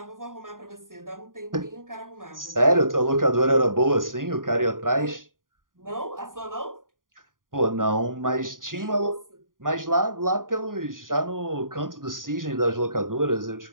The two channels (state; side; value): late; left; 0.90 ms